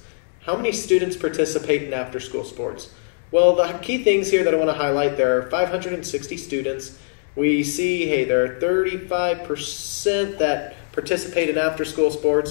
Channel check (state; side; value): silent; right; digital silence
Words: how many students participate in after-school sports? Well, the key things here that I want to highlight, there are 560 students. We see, hey, there are 35% that participate in after-school